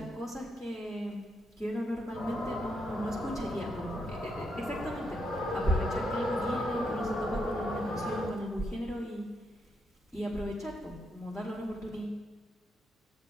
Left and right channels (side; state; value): both; normal; correlation 0.80